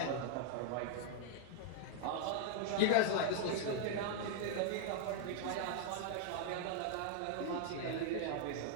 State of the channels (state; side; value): different; both; correlation 0.00